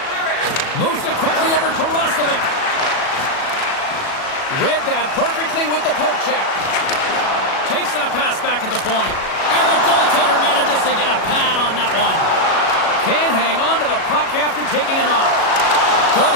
Moves it quickly over to Roslovic. Read that perfectly with the poke check. Takes that pass back at the point. And the goaltender manages to get a pad on that one. Can't hang on to the puck after taking a knock. Good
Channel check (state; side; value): late; right; 37 ms